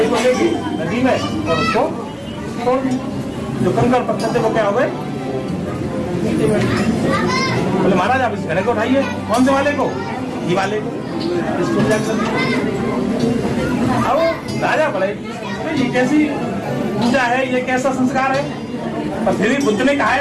को लेके नदी में और उसको तोड़ दी। जो कंकड़ पत्थर थे वो क्या हो गए? बोले महाराज आप इस घड़े को उठाइए। कौन से वाले को? घी वाले को। इसको अब राजा बोले ये कैसी पूजा है, ये कैसा संस्कार है? पर फिर भी बुद्ध ने कहा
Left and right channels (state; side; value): identical; both; correlation 1.00